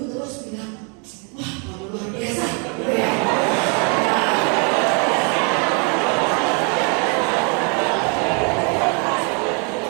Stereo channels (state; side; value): quieter; left; 36.5 dB